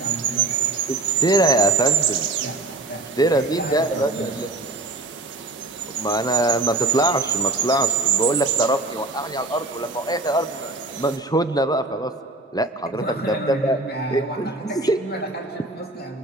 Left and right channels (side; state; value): left; quieter; 3.0 dB